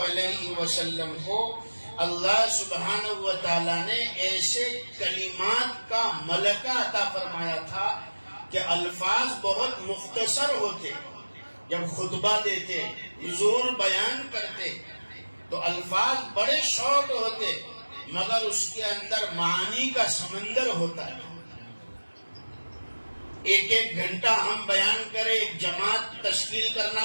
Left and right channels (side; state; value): both; inverted; correlation -1.00